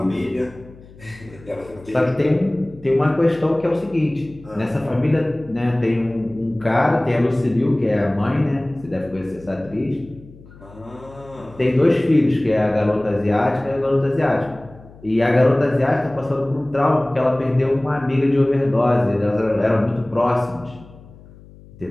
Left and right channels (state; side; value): noise; left; hum, 22 dB below the sound